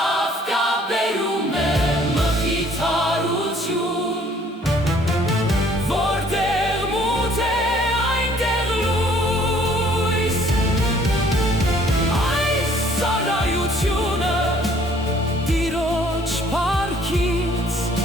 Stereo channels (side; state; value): both; normal; correlation 0.59